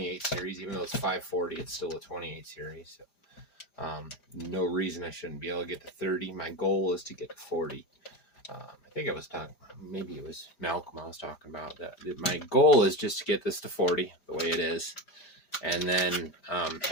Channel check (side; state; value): right; late; 5.0 ms